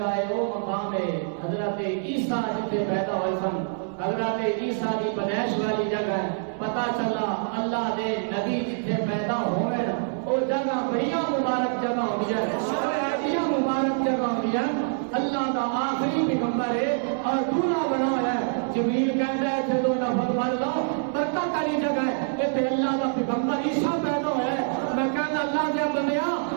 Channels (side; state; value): left; silent; digital silence